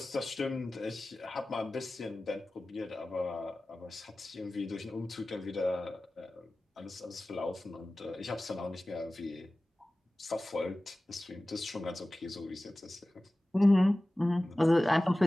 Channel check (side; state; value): both; normal; correlation 0.97